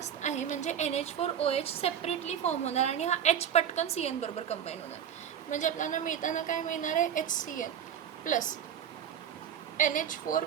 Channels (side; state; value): left; quieter; 9.0 dB